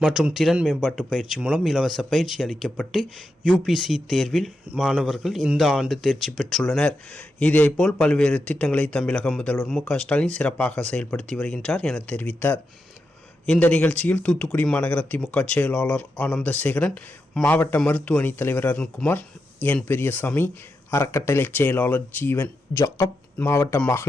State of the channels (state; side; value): normal; both; correlation 0.87